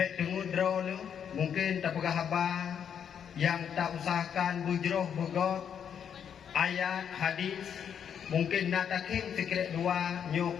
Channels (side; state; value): right; quieter; 8.2 dB